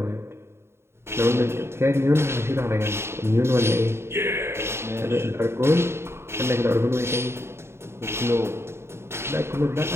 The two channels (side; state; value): left; late; 0.12 ms